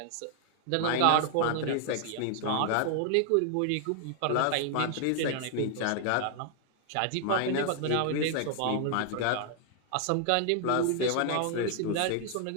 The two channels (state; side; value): different; both; correlation 0.00